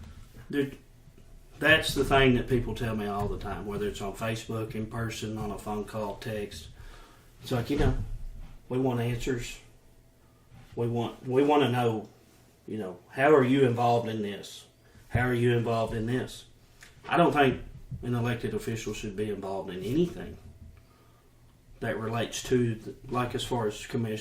that's the thing that people tell me all the time, whether it's on Facebook, in person, on a phone call, text. It's like, we want answers. We want to know, how are you involved in this? How are you involved in this? I don't think an elected official should be involved in anything that relates to, as far as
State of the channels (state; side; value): identical; both; correlation 1.00